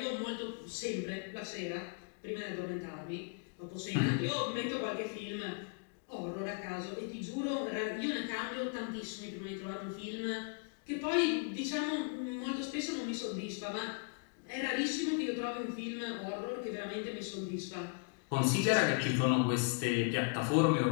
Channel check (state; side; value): quieter; right; 36.1 dB